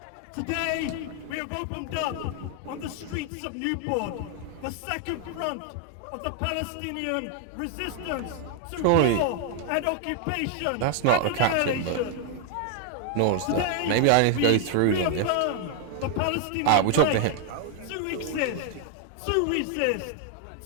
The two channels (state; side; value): different; both; correlation 0.00